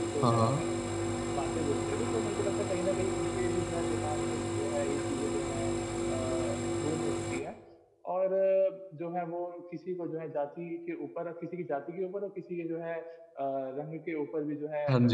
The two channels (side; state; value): both; identical; correlation 1.00